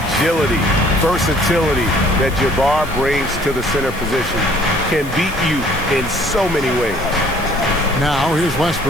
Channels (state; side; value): noise; left; hiss, 18 dB below the sound